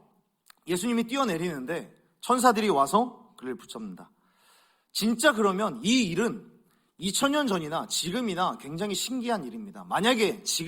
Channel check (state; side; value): identical; both; correlation 1.00